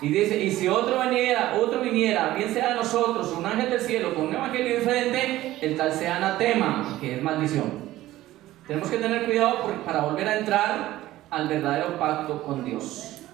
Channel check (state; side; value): quieter; left; 15.6 dB